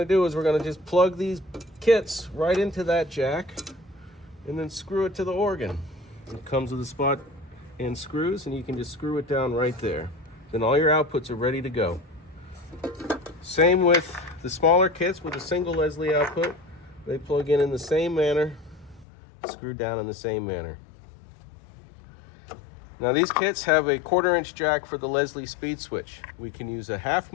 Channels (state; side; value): drops out; right; at 19.1 s